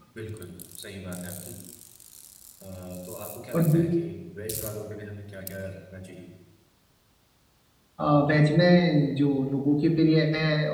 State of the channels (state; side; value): identical; both; correlation 1.00